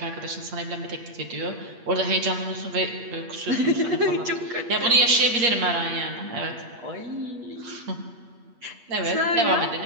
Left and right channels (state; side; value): late; left; 8.5 ms